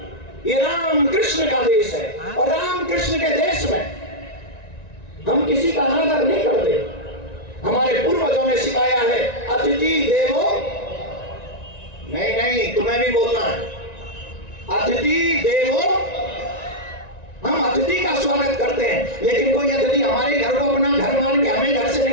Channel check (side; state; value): right; late; 1.9 ms